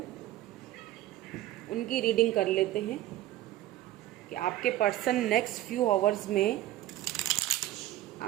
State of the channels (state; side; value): quieter; left; 14.5 dB